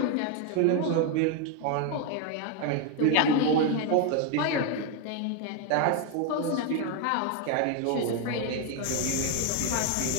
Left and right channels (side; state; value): both; different; correlation 0.01